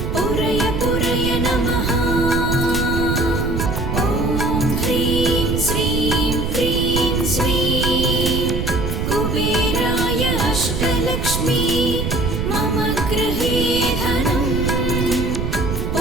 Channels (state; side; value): noise; right; rumble, 1 dB below the sound